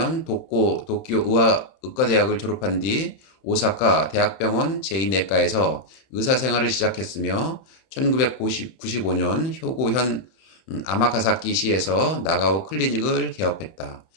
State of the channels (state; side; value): late; right; 31 ms